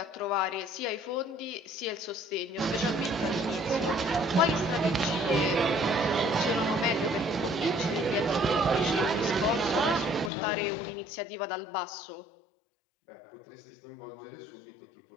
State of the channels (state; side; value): drops out; right; at 10.3 s